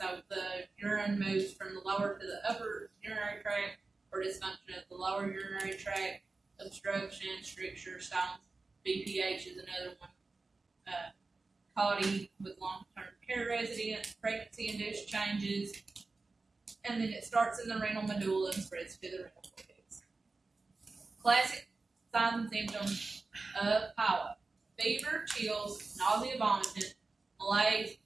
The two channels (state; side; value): quieter; left; 3.7 dB